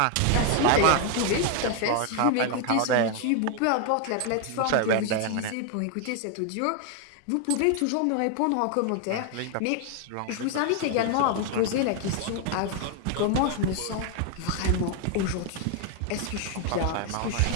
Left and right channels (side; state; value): both; different; correlation 0.01